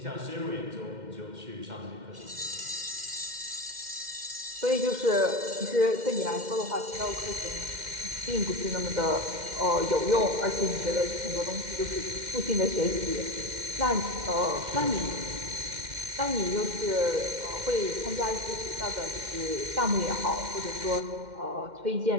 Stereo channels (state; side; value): late; left; 2.1 ms